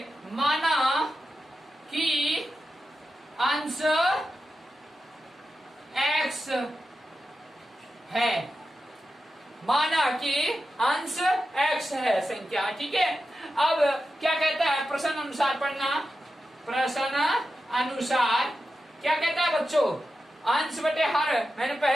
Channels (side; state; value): both; normal; correlation 0.91